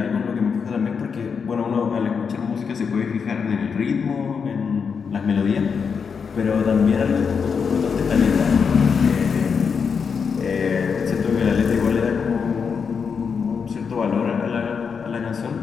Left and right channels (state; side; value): quieter; right; 6.0 dB